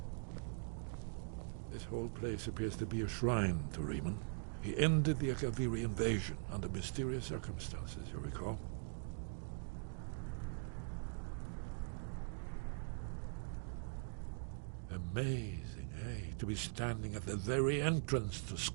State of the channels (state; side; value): silent; left; digital silence